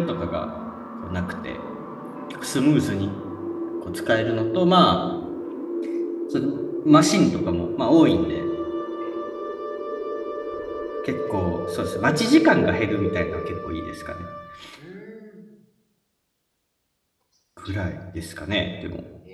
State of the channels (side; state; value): both; identical; correlation 1.00